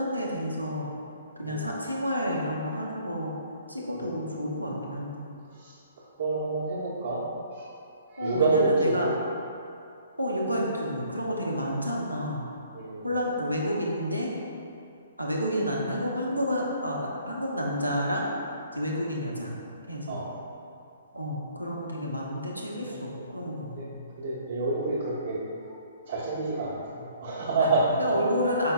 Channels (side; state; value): both; inverted; correlation -0.60